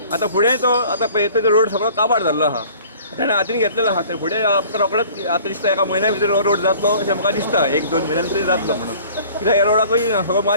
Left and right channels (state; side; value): inverted; both; correlation -0.49